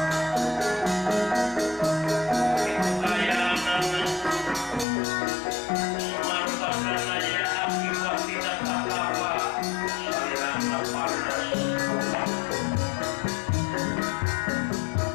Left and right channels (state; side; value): drops out; right; at 4.9 s